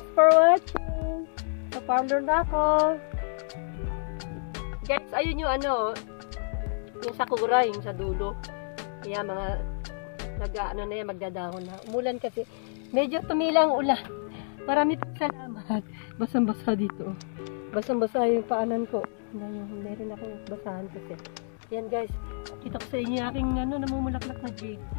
for watching. Sa parlor na ako. Guys, ayun yung ano, yung sakura, yung sa dulo. Kaya mga nag-ano na yan, magdadahon na. Umulan kasi. Medyo tumilang ulan. Marami pong salamat. Basang-basa dito. Basang-basa yung paanan ko. Tingnan yung meron akong basahan kasi. Yan guys. Kita ko sa inyo aking ano, namumulaklak na jade.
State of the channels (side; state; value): right; silent; digital silence